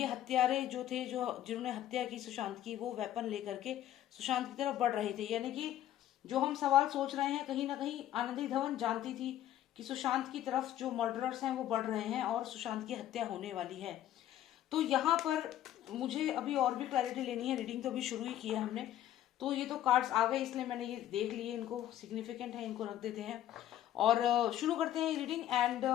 हत्यारे जो थे, जो जिन्होंने हत्या की सुशांत की, वो वेपन लेकर के सुशांत की तरफ बढ़ रहे थे। यानी कि जो हम सवाल सोच रहे हैं, कहीं ना कहीं आनंदी धवन जानती थी कि सुशांत की तरफ जो मर्डरर्स हैं वो बढ़ रहे हैं और सुशांत की हत्या होने वाली है। तो यहाँ पर मुझे अभी और भी क्लैरिटी लेनी है। रीडिंग तो अभी शुरू ही की है हमने, तो ये तो कार्ड्स आ गए इसलिए मैंने ये देख लिए, इनको सिग्निफिकेंट है, इनको रख देते हैं और शुरू करते हैं रीडिंग। एंड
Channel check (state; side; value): quieter; right; 12.3 dB